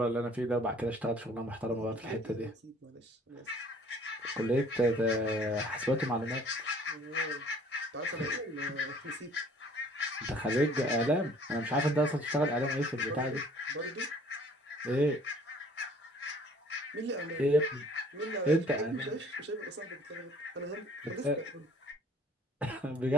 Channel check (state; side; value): normal; both; correlation 0.55